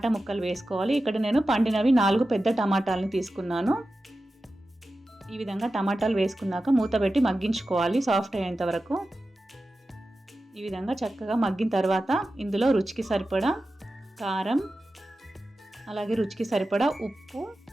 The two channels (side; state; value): both; normal; correlation 0.93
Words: ముక్కలు వేసుకోవాలి. ఇక్కడ నేను పండినవి 4 పెద్ద టమాటాలని తీసుకున్నాను. ఈ విధంగా టమాటాలు వేసుకున్నాక మూత పెట్టి మగ్గించుకోవాలి సాఫ్ట్ అయ్యేంత వరకు. ఈ విధంగా చక్కగా మగ్గిన తర్వాత ఇందులో రుచికి సరిపడా కారం అలాగే రుచికి సరిపడా ఉప్పు